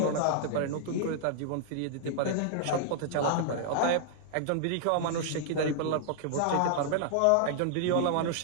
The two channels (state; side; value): different; both; correlation -0.01